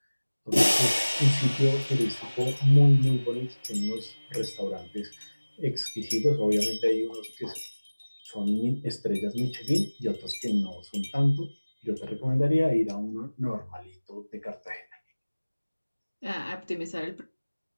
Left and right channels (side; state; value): both; inverted; correlation -1.00